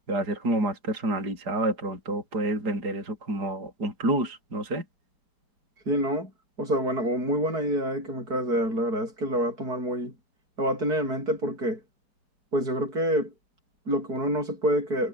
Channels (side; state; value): left; late; 4.9 ms